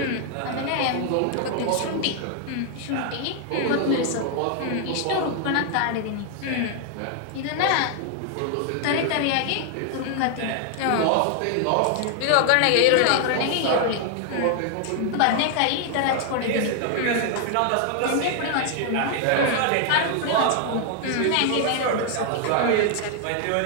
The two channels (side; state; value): both; different; correlation 0.00